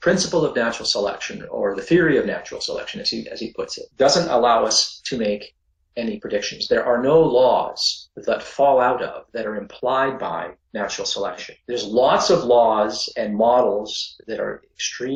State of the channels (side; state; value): both; identical; correlation 1.00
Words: of natural selection, or the theory of natural selection, as he puts it, doesn't allow us to make any predictions. There are no laws that fall out of, that are implied by natural selection. There's lots of laws and models that are